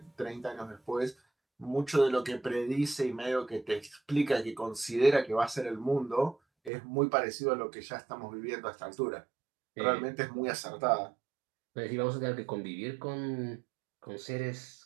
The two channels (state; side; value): drops out; left; at 6.7 s